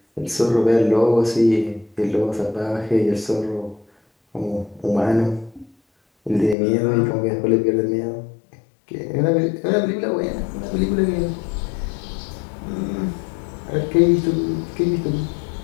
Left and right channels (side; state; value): right; drops out; at 6.6 s